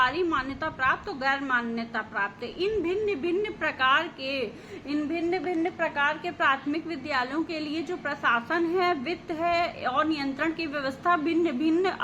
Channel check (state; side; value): identical; both; correlation 1.00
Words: मान्यता प्राप्त और गैर मान्यता प्राप्त। इन भिन्न भिन्न प्रकार के प्राथमिक विद्यालयों के लिए जो प्रशासन है, वित्त है और नियंत्रण की व्यवस्था भिन्न भिन्न